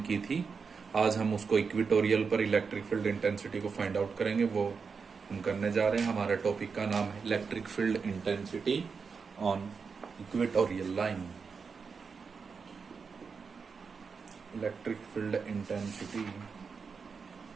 की थी। आज हम उसको इक्वेटोरियल पर इलेक्ट्रिक फील्ड इंटेंसिटी को फाइंड आउट करेंगे। वो हम करने जा रहे हैं। हमारे टॉपिक का नाम है electric field intensity on equatorial line. Electric field intensity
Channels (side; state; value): left; quieter; 5.4 dB